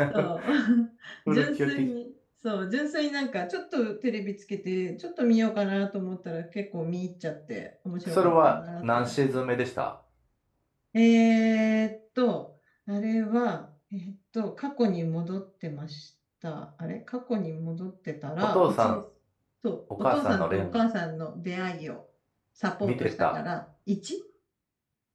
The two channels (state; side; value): identical; both; correlation 1.00